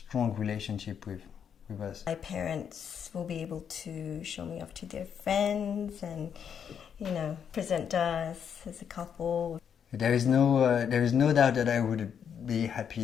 relationship with us. My parents will be able to show me off to their friends and, present us as a couple. There is no doubt that I would be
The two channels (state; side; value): quieter; right; 7.9 dB